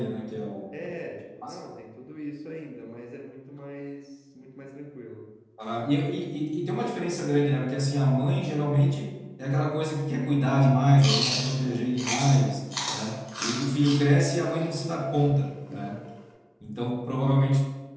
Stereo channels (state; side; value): identical; both; correlation 1.00